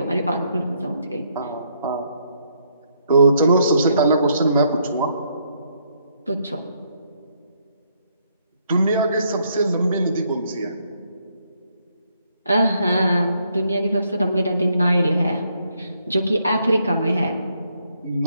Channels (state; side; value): inverted; both; correlation -0.73